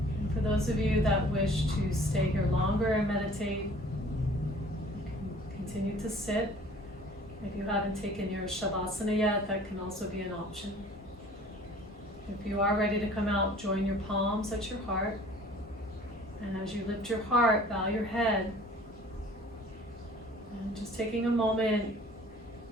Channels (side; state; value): both; normal; correlation 0.50